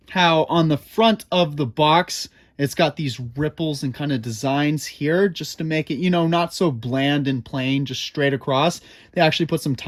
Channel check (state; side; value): identical; both; correlation 1.00